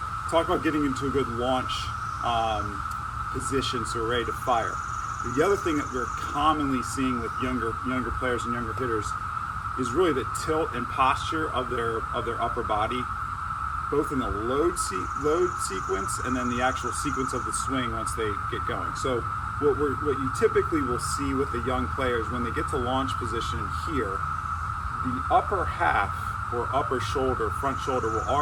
talk about getting into a good launch position so we're ready to fire. The other thing that we're commonly seeing with younger players and younger hitters is really the tilt and posture of their upper body, both in the load sequence and then the actual sequence of the swing once they get going. So what you typically will see with the young players when they get to launch position here, the upper half or upper shoulder, front shoulder will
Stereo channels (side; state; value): both; identical; correlation 1.00